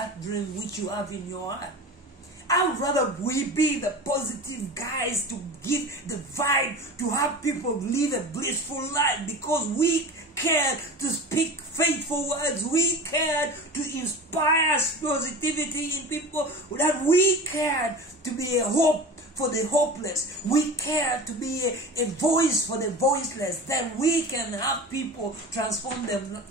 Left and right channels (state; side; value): normal; both; correlation 0.33